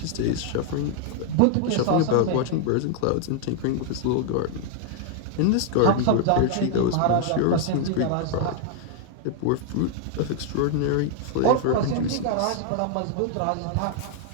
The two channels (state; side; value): different; both; correlation 0.00